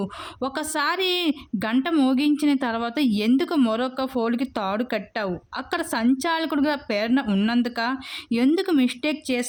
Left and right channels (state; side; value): identical; both; correlation 1.00